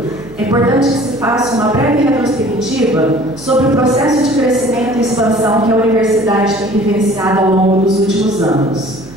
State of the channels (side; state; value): right; noise; hum, 19 dB below the sound